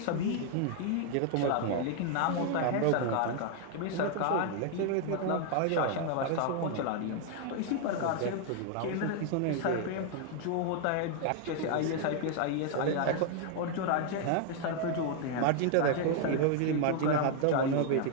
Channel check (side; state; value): both; different; correlation 0.00